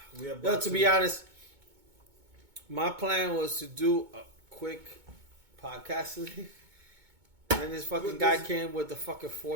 To be honest, my plan was to do a quick podcast today. And this fucking guy came with the fucking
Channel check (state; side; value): late; left; 2.2 ms